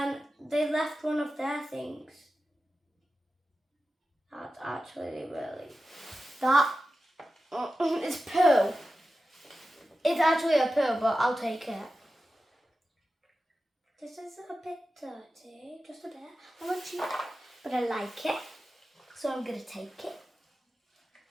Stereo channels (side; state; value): both; normal; correlation 0.93